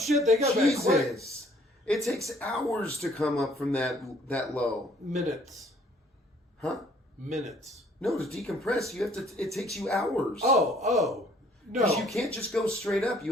they got back quick. Jesus. It takes hours to come up from that low. Minutes. Huh? Minutes. No, to decompress, it takes you hours. Oh. No. Because you can't just go straight up. You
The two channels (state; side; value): normal; both; correlation 0.60